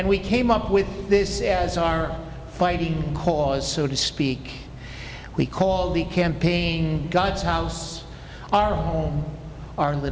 we came up with this as our fighting cause, so to speak. We call the campaign God's House, Our Home, Our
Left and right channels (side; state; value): both; identical; correlation 1.00